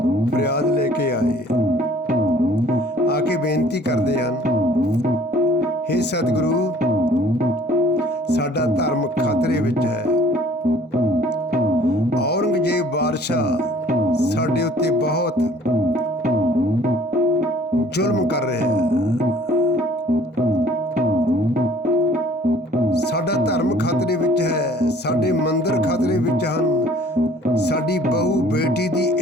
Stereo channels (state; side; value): normal; both; correlation 0.54